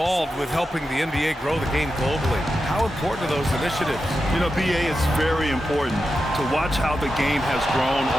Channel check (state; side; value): normal; both; correlation 0.90